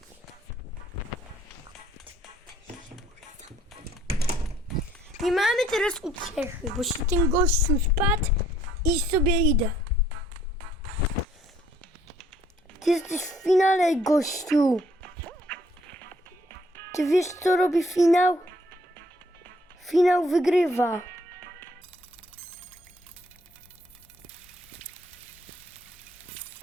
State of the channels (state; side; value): normal; both; correlation 0.63